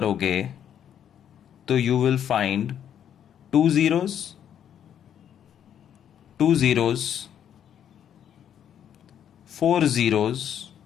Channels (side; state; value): right; quieter; 9.4 dB